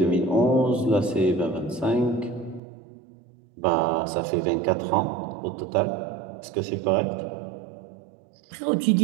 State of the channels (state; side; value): drops out; left; at 2.6 s